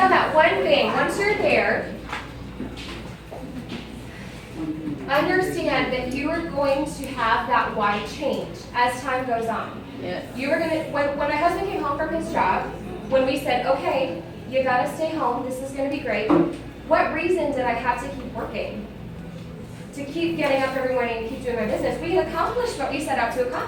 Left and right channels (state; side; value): identical; both; correlation 1.00